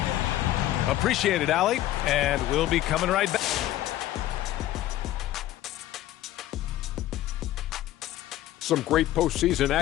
Appreciate it, Allie. And we'll be coming right back. Some great postseason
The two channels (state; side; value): quieter; right; 14.1 dB